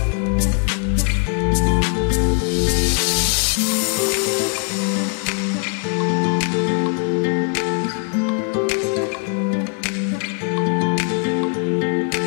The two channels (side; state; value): right; quieter; 39.9 dB